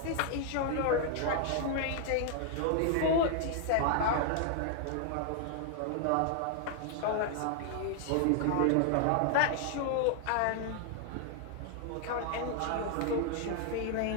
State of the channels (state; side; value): different; both; correlation 0.00